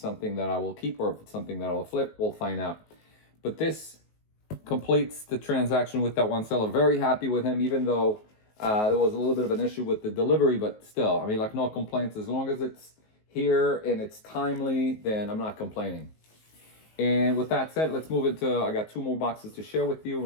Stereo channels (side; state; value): right; late; 19 ms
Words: that I will keep or if it's something that I will flip. We'll find out. But this completes the transaction with that one seller. Very happy with him, even though there was a little bit of an issue with the delivery, but still, I mean, like, no complaints. As long as it's here and it's timely, then I'm not complaining. And with that said, let's move into, I got 2 more boxes to share with you,